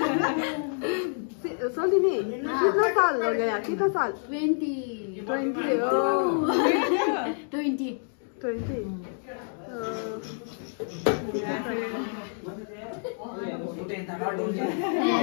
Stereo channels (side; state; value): right; silent; 58 dB below the other